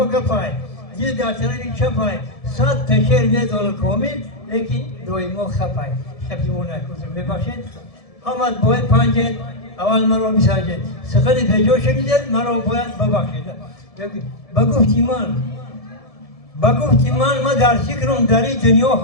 گفای دل در طرفی چپای صد تشیر میدال کامل لیکن دوی ما خپای خپی مون نکوزم ببخشید همت باید پنجید اول مرا میسنجید سخن پیجا شدید مرا باید ببخشید بگفتی من در فکرم در این دنیا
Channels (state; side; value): late; right; 1.7 ms